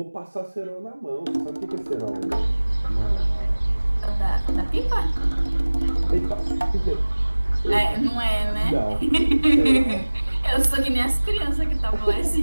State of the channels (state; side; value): inverted; both; correlation -1.00